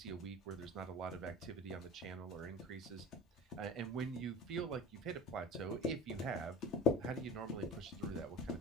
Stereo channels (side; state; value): both; normal; correlation 0.37